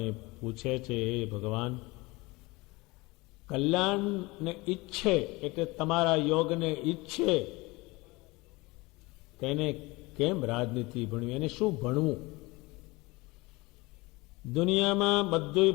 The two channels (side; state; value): right; quieter; 23.3 dB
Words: પૂછે છે, હે ભગવાન, કલ્યાણને ઈચ્છે એટલે તમારા યોગને ઈચ્છે તેને કેમ રાજનીતિ ભણવી, એને શું ભણવું? દુનિયામાં બધું